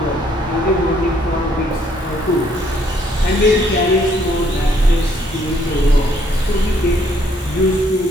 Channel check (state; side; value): normal; both; correlation 0.67